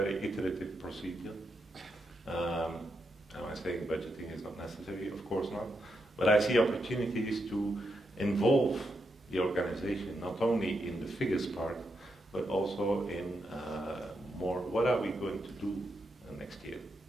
iterative procedure. Am I saying budgeting is not necessary? Of course not. But I see opportunities to involve the organization, not only in the figures part, but also in more, what are we going to do next year?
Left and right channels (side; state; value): both; normal; correlation 0.83